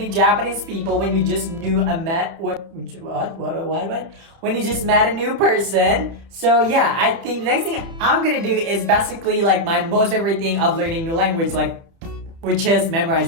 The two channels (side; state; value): left; late; 31 ms